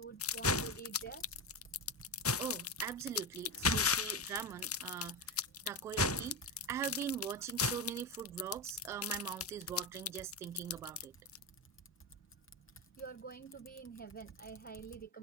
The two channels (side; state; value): both; normal; correlation 0.16